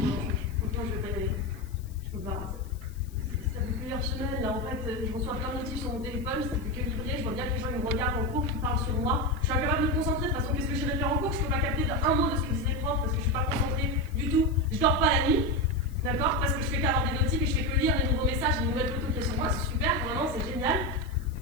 franchement je vais pas y aller. Je peux pas. Ça fait plusieurs semaines là en fait, je reçois plein de notifs sur mon téléphone, c'est plus que livré, je vois bien que les gens ils me regardent en cours, qui parlent sur moi. Je suis incapable de me concentrer, de toute façon qu'est-ce que j'irai faire en cours? Je peux pas capter un mot de ce que disent les profs parce que je suis pas concentrée du tout. Je dors pas la nuit, d'accord? Parce que je fais qu'avoir des notifs et je fais que lire les nouveaux messages, les nouvelles photos qu'il y a sur moi, c'est super, vraiment c'est génial.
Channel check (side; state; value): left; noise; hiss, 26 dB below the sound